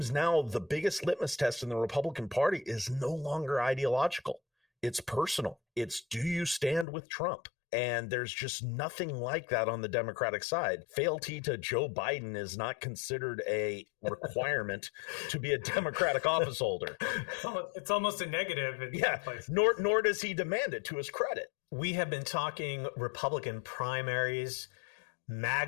now the biggest litmus test in the Republican Party is no longer ideological. It's personal. It's, do you stand with Trump? And there's just nothing like that on the Democratic side. Fealty to Joe Biden is not considered a requirement to be a Democratic office holder. It's almost a negative in some places. Nor does he demand it, to his credit. We have been talking Republican primaries,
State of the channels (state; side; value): drops out; right; at 6.9 s